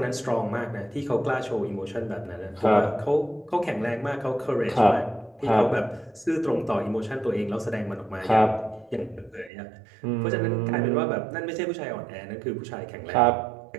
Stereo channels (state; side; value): drops out; left; at 9.5 s